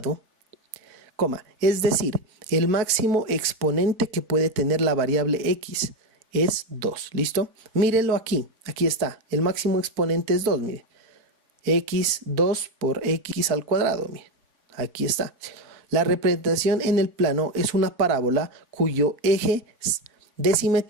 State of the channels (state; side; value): late; left; 4.4 ms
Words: es decir, el máximo exponente que puede tener la variable x es 2, ¿listo? Mírenlo aquí, aquí está, el máximo exponente es 2, miren, x2 por x al cuadrado, miren, aquí está. La representación en el plano es una parábola cuyo eje de